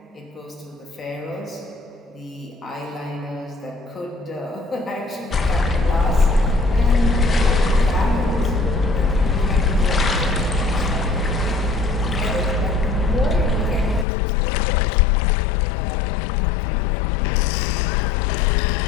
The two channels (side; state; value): right; drops out; at 14.1 s